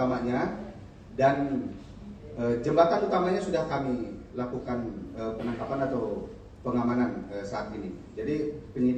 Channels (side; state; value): both; identical; correlation 1.00